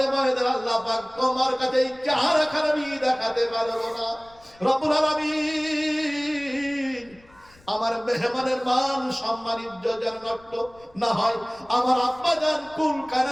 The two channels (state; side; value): noise; left; rumble, 28 dB below the sound